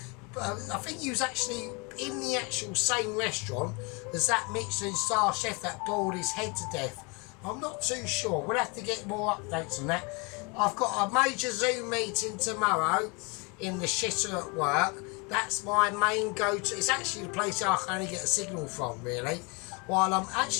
I think he was actually in the actual same restaurant as that Michelin star chef that boiled his head to death. I'm not too sure. We'll have to get more updates on that. I've got a major Zoom meeting tomorrow in the shitter at work. That's my main go-to. It's actually the place I can only get a signal from, really. While I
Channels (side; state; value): right; quieter; 30.5 dB